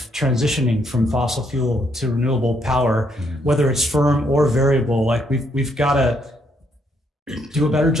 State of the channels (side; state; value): both; normal; correlation 0.73